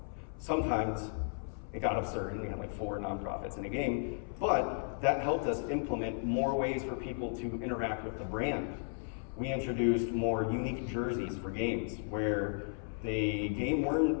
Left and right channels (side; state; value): right; silent; 55 dB below the other